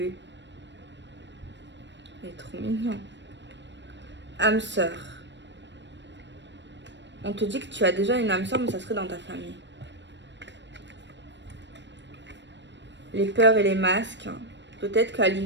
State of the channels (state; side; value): late; left; 0.53 ms